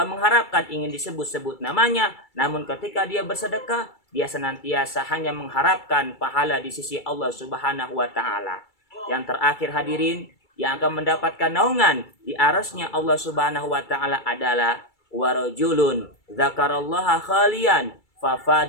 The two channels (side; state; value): right; late; 2.3 ms